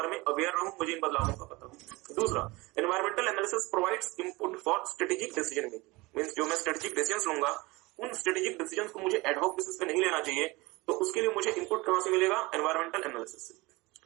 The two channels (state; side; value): quieter; left; 22.9 dB